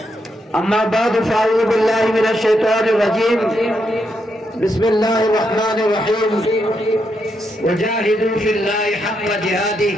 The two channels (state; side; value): normal; both; correlation 0.81